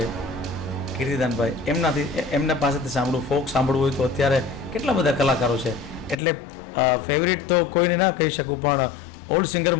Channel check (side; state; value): right; drops out; at 6.2 s